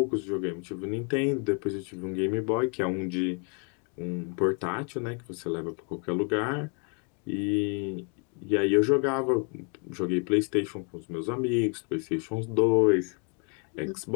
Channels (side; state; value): right; quieter; 38.4 dB